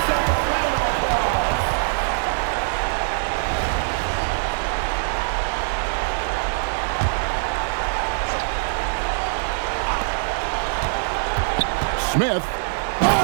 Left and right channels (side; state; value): left; silent; 64 dB below the other